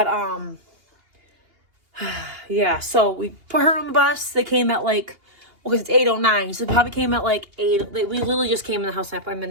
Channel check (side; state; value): left; late; 2.8 ms